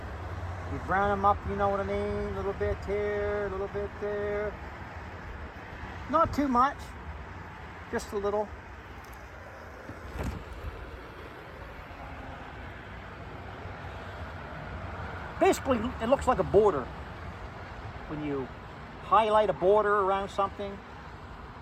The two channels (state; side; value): identical; both; correlation 1.00